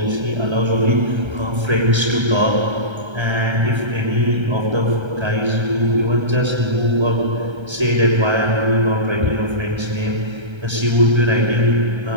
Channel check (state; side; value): late; left; 1.3 ms